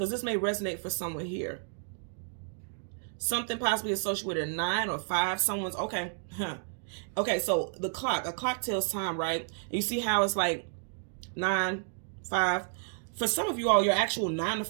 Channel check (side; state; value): left; silent; digital silence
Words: this may resonate for someone here. Something possibly associated with a 9 or 5. Someone's, okay. Okay, so the clock. A clock tells time, right? You see how it's like 9, 5. For some of you all, your actual 9 to